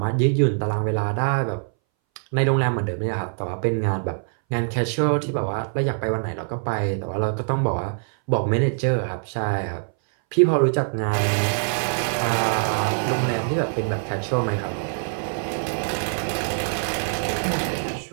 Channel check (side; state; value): left; silent; 61 dB below the other